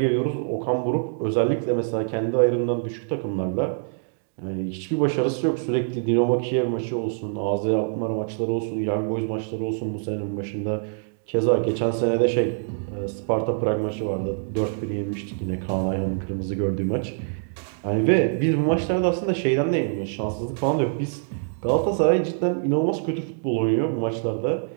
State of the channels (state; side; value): silent; left; digital silence